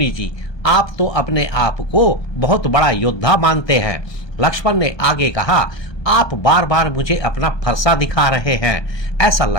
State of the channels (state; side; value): late; right; 1.2 ms